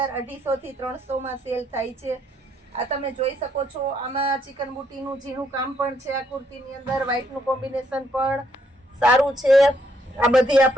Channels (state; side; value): normal; both; correlation 0.72